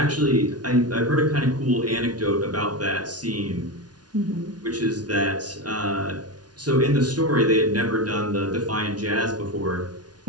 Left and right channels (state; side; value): late; left; 0.69 ms